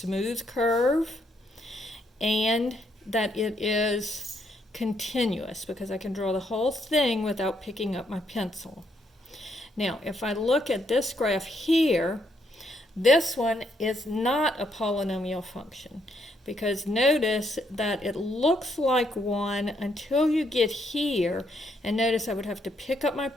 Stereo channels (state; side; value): normal; both; correlation 0.74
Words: curve and that it is continuous because I can draw the whole thing without picking up my pencil. Now, if I look at this graph here, this one is not a polynomial function because notice that it looks like one until you get here, and notice I would have to pick up my